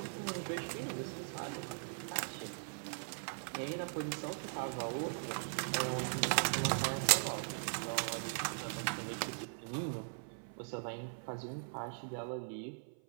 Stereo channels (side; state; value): left; silent; 51 dB below the other